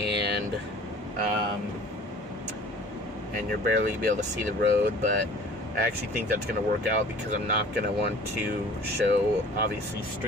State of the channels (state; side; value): normal; both; correlation 0.47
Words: you're barely be able to see the road, but I actually think that's going to work out because I'm not going to want to show, obviously,